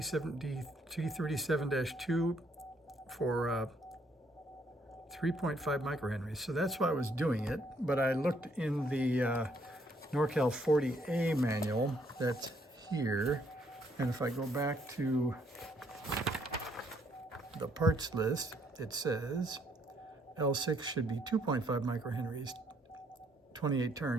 for 3.5 microhenries. So that's why I was doing it. But I looked in the NorCal 40A manual that's here. And if I go back to the parts list, it says L6 should be 2.5 microhenries, 28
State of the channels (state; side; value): normal; both; correlation 0.69